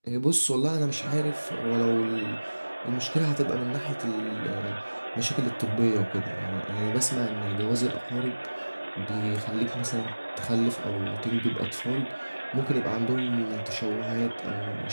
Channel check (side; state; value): both; inverted; correlation -1.00